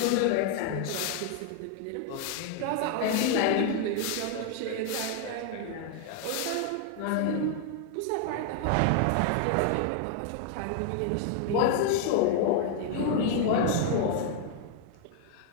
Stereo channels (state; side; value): different; both; correlation 0.00